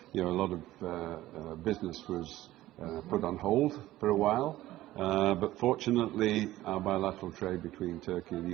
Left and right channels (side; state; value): left; quieter; 15.6 dB